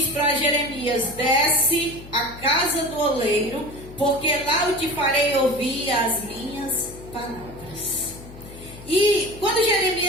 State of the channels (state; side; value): noise; left; hum, 16 dB below the sound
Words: para Jeremias: desce à casa do oleiro, porque lá eu te farei ouvir as minhas palavras. E quando